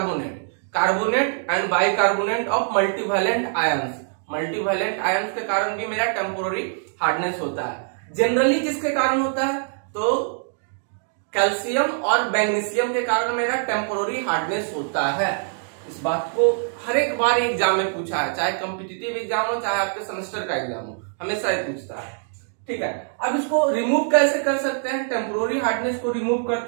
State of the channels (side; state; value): left; silent; digital silence